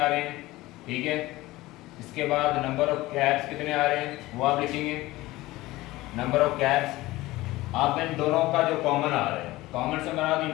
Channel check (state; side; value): quieter; right; 18.5 dB